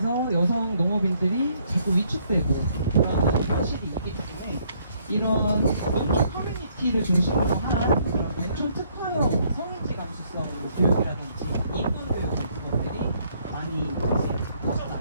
여성 농업인들이 자꾸 위축되고 그런 현실이 있기 때문에 이런 농촌 커뮤니티를 중심으로 한 농촌 특화형 성인지 감수성 교육이라든지 인권 교육 같은 것들이 많이 이제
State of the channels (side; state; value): both; inverted; correlation -0.67